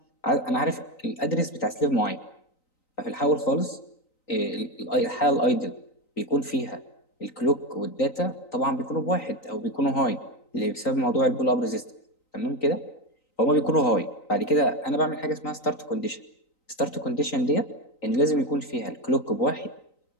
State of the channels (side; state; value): right; late; 3.9 ms